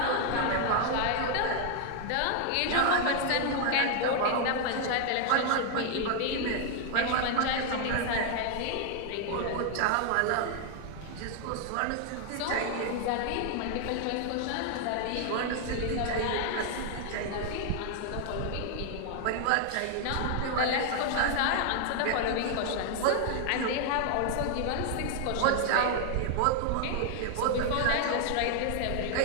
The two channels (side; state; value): both; different; correlation 0.00